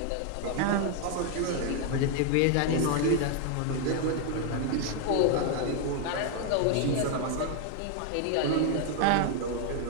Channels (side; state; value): both; different; correlation 0.00